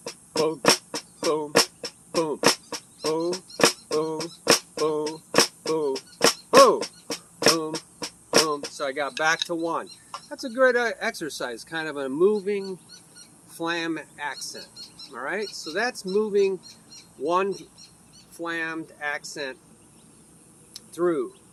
boom, boom, boom, boom, boom, boom, boom, boom, boom. So I got back to 1. That's a good exercise, kind of a moving flam accent. All right, so that's moving 1 flammed accent through.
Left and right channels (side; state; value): both; identical; correlation 1.00